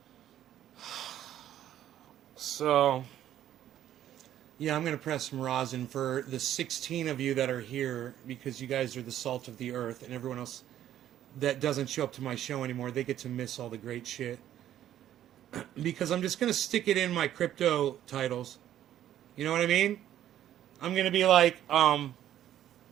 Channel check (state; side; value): quieter; left; 11.7 dB